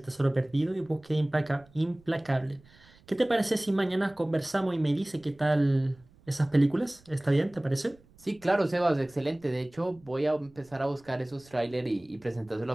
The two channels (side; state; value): right; noise; rumble, 28 dB below the sound